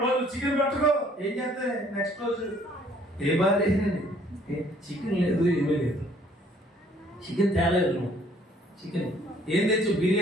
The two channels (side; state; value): both; normal; correlation 0.60